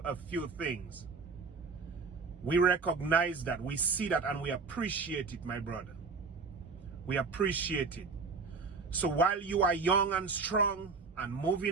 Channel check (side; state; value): left; quieter; 4.5 dB